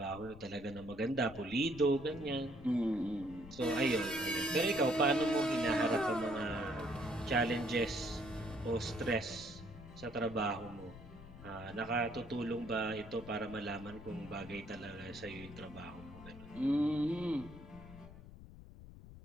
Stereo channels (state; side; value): noise; left; rumble, 16 dB below the sound